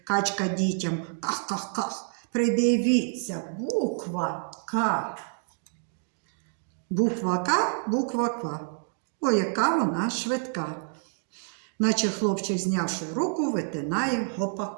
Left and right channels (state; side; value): silent; left; 59 dB below the other